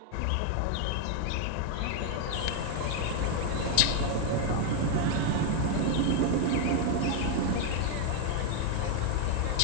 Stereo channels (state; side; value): different; both; correlation 0.00